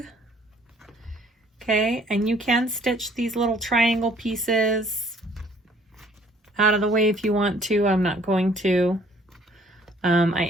Okay, and you can stitch these little triangle pieces out of the way if you want to. I'm not going to. I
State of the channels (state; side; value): normal; both; correlation 0.59